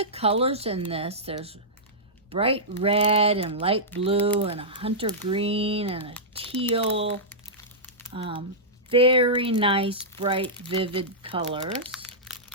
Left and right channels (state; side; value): normal; both; correlation -0.13